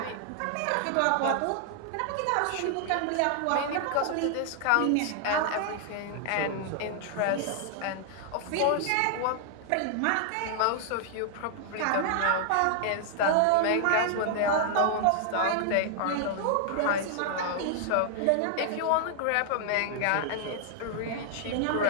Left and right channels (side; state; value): both; different; correlation 0.00